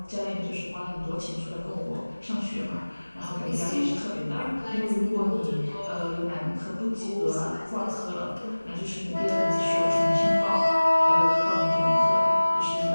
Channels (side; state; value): both; inverted; correlation -1.00